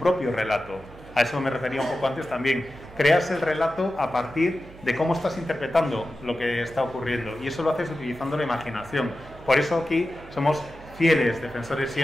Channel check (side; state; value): right; noise; hum, 20 dB below the sound